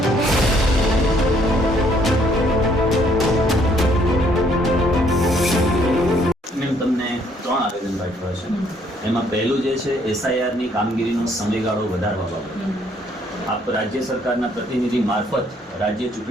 તમને 3 આવેદન પાઠવ્યા છે. એમાં પહેલું જે છે SIR ની કામગીરીનો સમયગાળો વધારવા બાબતે આપ રાજ્ય સરકારના પ્રતિનિધિ મારફત રાજ્ય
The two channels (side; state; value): both; normal; correlation 0.66